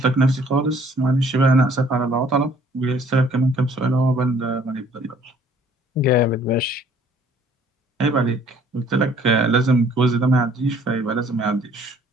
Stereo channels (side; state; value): both; normal; correlation 0.58